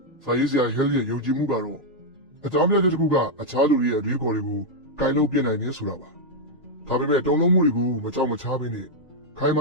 စာရေးဆရာဟဲလ်ရဲ့ယုံကြည်မှုကတော့အကြောင်းပြချက်တစ်ခုကအခြားလူတွေရဲ့အတွေးခေါ်တွေကိုကင်လို့ပြနိုင်နေဆိုတာပါဒါပေမဲ့တုံ့လုံးမှုတွေကိုမကြောက်မချားဘဲနဲ့ခိုင်မ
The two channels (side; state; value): both; normal; correlation -0.02